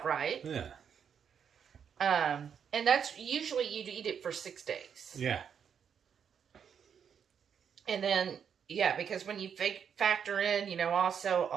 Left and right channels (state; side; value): quieter; left; 7.6 dB